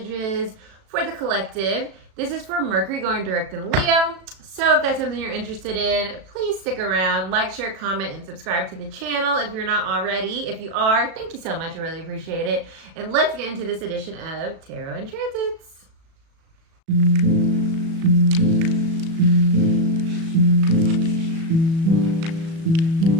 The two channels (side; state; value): left; late; 36 ms